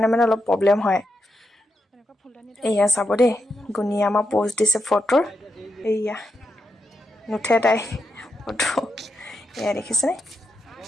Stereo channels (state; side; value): normal; both; correlation 0.84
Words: অলপ প্ৰব্লেম হয়। এয়া চাব দেই, গুণীয়ে আমাৰ প'ষ্ট দিছে ফটোৰ। এয়া নুঠে তাই ফটো, এয়া দেখিছেনে।